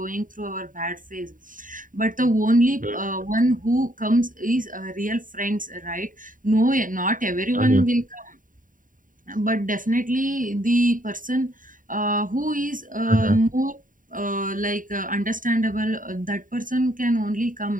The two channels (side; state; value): left; late; 0.39 ms